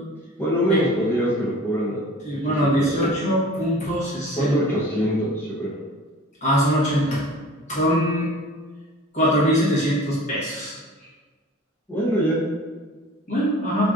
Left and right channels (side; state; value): both; normal; correlation 0.44